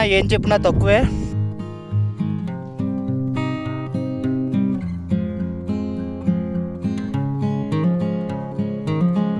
ఏం చెప్పినా తక్కువే.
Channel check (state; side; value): identical; both; correlation 1.00